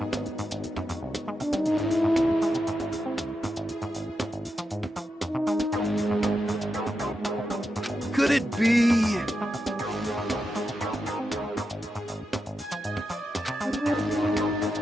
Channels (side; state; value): both; normal; correlation 0.87